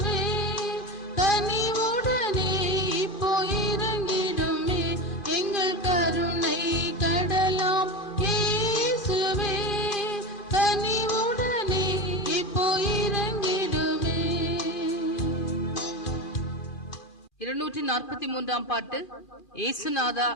கனிவுடனே இப்போ இறங்கிடுமே எங்கள் கருணை கடலாம் இயேசுவே கனிவுடனே இப்போ இறங்கிடுமே. 243 பாட்டு. ஏசுநாதா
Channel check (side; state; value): right; late; 2.4 ms